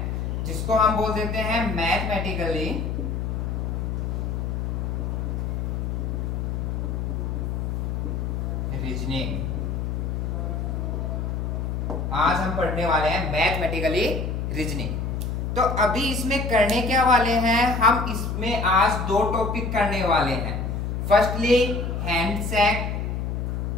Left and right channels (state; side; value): noise; left; hum, 2 dB below the sound